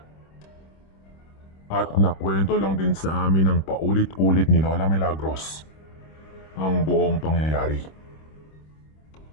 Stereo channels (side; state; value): right; late; 26 ms